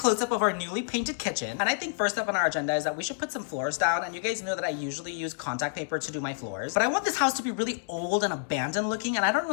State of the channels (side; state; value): right; silent; digital silence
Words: of our newly painted kitchen. And I think first up on our agenda is that we should put some floors down. And you guys know that I usually use contact paper to do my floors. But I want this house to be really old and abandoned looking, and I don't